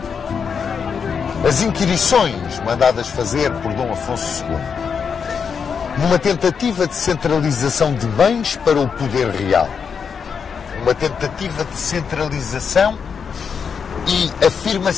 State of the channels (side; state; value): right; quieter; 6.4 dB